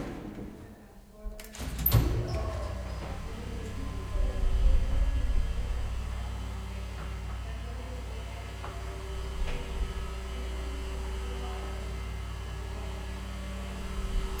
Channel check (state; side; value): identical; both; correlation 1.00